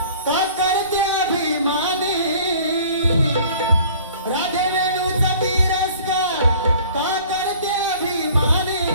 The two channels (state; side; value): inverted; both; correlation -0.50